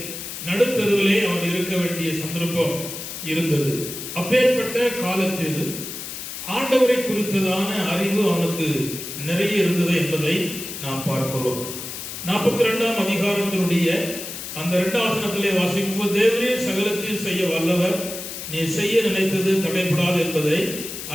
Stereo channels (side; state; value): left; noise; hiss, 8 dB below the sound